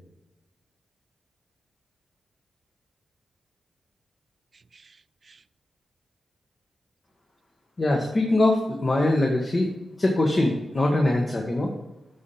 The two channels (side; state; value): both; normal; correlation 0.93